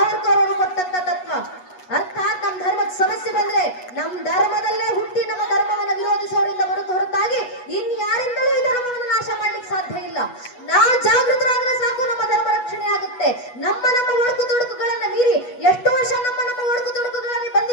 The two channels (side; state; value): right; late; 8.2 ms